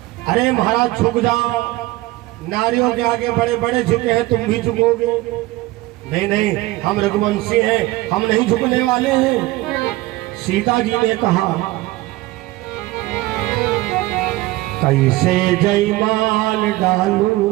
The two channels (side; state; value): left; quieter; 18.9 dB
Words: अरे महाराज झुक जाओ, नारियों के आगे बड़े बड़े झुके हैं, तुम भी झुकोगे? नहीं नहीं, हम रघुवंशी हैं, हम नहीं झुकने वाले हैं। सीता जी ने कहा कैसे जयमाल